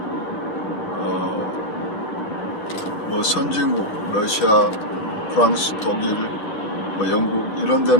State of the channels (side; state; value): right; late; 6.5 ms